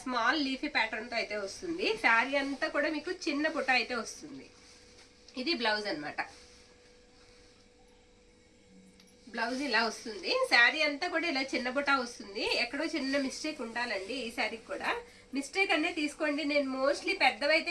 స్మాల్ లీఫీ ప్యాటర్న్తో అయితే వస్తుంది. శారీ అంతా కూడా మీకు చిన్న పుట్ట అయితే వస్తుంది. ఇది బ్లౌజ్ అనమాట. బ్లౌజ్ ఇలా వస్తుంది. శారీ అంతా కూడా ఇలా చిన్న బుట్ట వస్తుంది. ఎక్కడో చిన్న మిస్టేక్ ఉండాలండి ఈ శారీకి కూడా. మిస్టేక్ అనేది తీసుకోండి, నేను మోస్ట్లీ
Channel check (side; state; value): both; identical; correlation 1.00